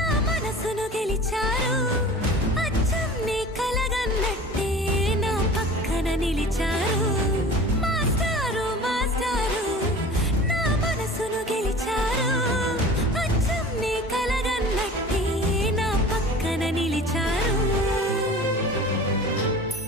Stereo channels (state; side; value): normal; both; correlation 0.40